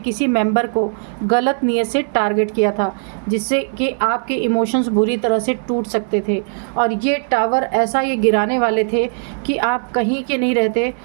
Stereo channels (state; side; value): silent; left; 67 dB below the other